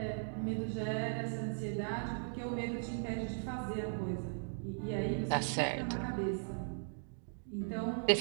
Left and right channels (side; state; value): left; silent; digital silence